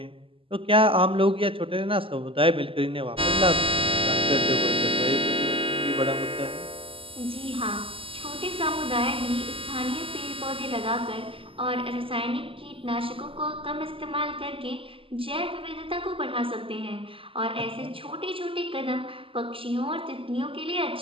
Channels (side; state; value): left; late; 0.26 ms